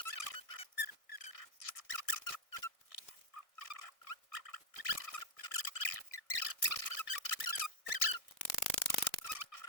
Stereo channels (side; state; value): right; late; 1.6 ms